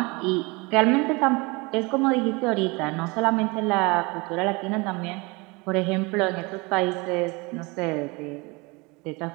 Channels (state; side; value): quieter; left; 26.4 dB